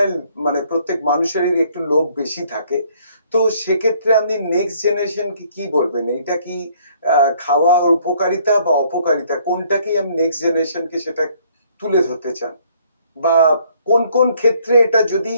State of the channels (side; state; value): both; inverted; correlation -0.63